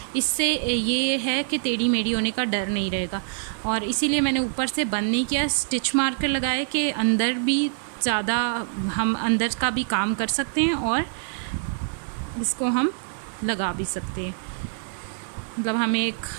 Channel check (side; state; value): left; silent; 62 dB below the other